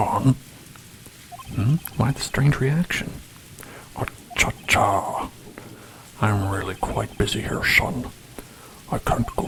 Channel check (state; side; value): identical; both; correlation 1.00